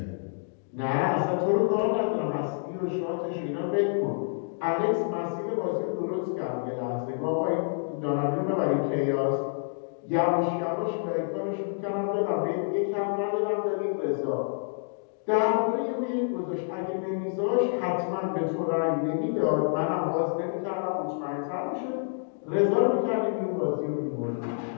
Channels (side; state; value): right; silent; digital silence